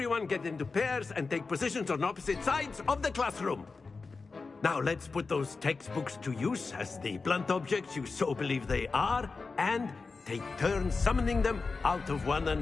get into pairs and take positions on opposite sides of the classroom. Now let's put those textbooks to use as the blunt objects you so believe they are, and take turns summoning them out of one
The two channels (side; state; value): right; quieter; 4.3 dB